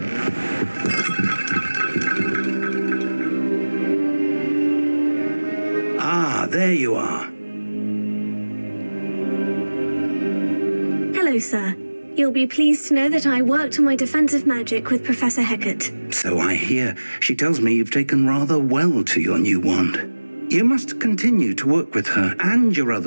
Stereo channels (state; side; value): inverted; both; correlation -1.00